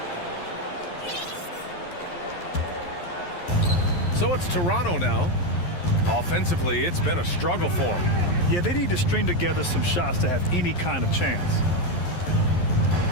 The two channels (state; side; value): late; right; 11 ms